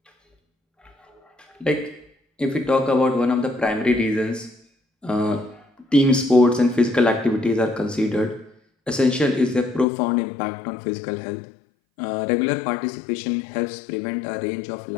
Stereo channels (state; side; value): drops out; right; at 9.9 s